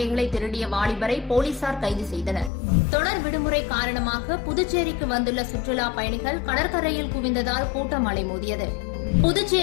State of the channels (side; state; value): right; drops out; at 2.5 s